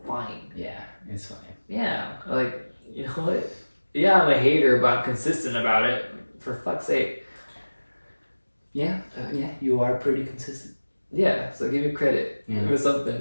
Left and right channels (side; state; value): both; inverted; correlation -1.00